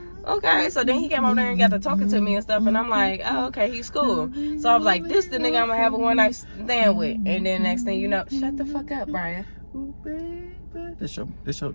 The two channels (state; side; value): inverted; both; correlation -1.00